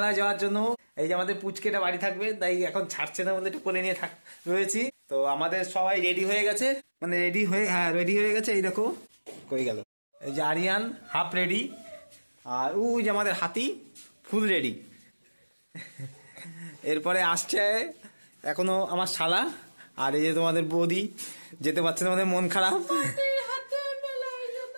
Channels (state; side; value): inverted; both; correlation -1.00